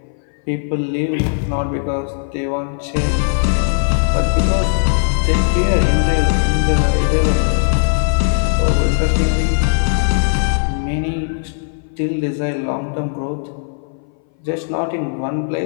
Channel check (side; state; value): right; silent; 61 dB below the other